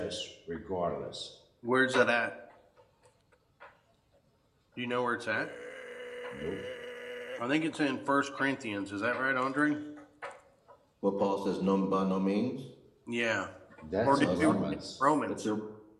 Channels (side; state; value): both; identical; correlation 1.00